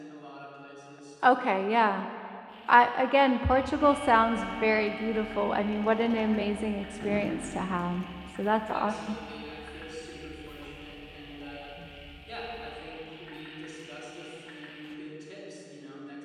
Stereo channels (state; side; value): identical; both; correlation 1.00